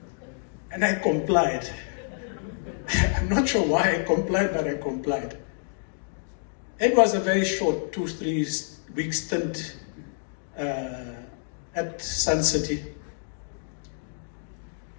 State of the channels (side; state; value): right; silent; digital silence